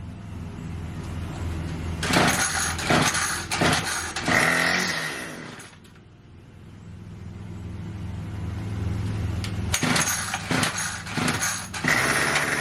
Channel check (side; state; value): both; identical; correlation 1.00